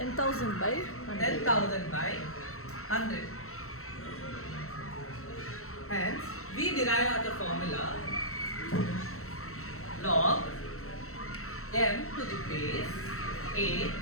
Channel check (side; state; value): right; late; 0.63 ms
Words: by 100. 10,000 by 100. Hence, we derive the formula log m to the base a